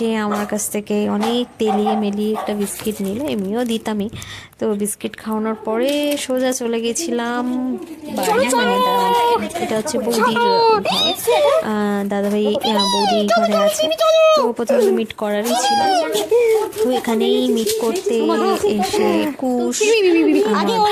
আমার কাছ থেকে অনেক তেলিয়ে মেলিয়ে একটা বিস্কিট নিল। এমনিও দিতামই। তো বিস্কিট খাওয়ানোর পরে সোজা চলে গেছিলাম বাড়ি, মানে এটা হচ্ছে বৌদির ঘর। দাদাভাই বৌদি এই ঘরে আছে। তো প্রথমে মিট করারই ছিল, তো এখানেই মিট করতে এসে কুশ আগে ওই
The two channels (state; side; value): identical; both; correlation 1.00